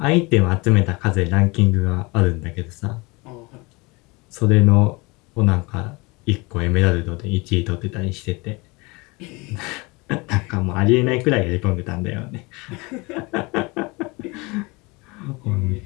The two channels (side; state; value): right; quieter; 25.7 dB